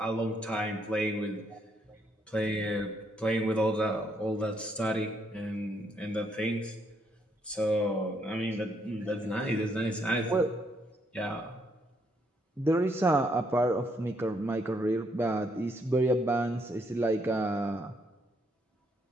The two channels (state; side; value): normal; both; correlation 0.73